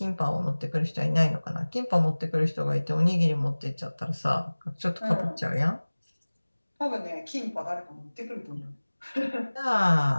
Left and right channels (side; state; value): both; inverted; correlation -1.00